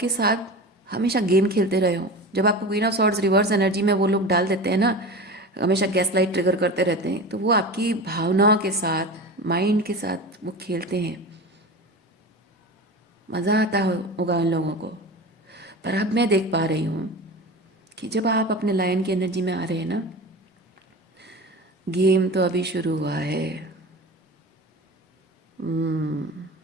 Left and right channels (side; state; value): both; normal; correlation 0.31